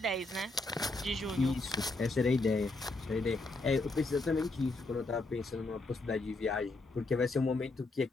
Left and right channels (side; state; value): right; quieter; 3.0 dB